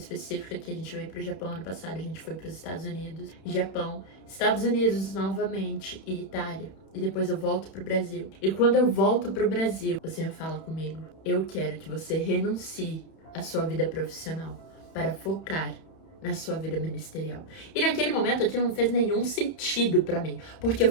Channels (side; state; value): right; late; 31 ms